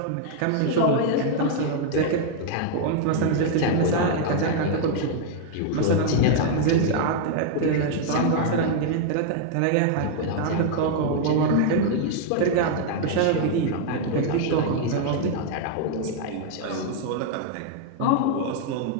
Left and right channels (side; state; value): both; different; correlation 0.00